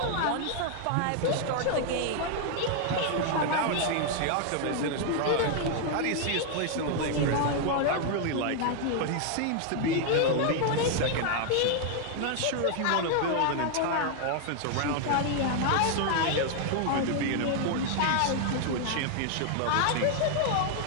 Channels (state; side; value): different; both; correlation 0.00